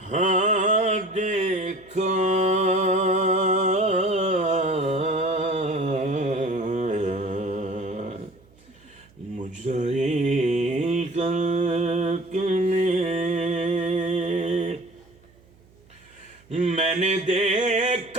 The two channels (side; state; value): right; noise; hum, 29 dB below the sound